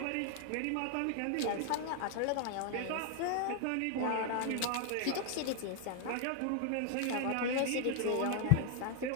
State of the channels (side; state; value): both; different; correlation 0.00